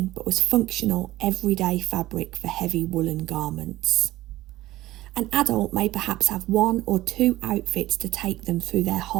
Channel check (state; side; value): quieter; left; 16.4 dB